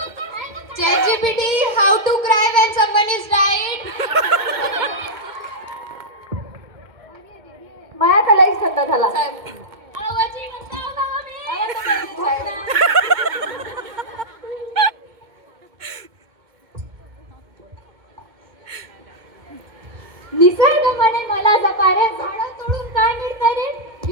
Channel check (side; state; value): left; late; 2.2 ms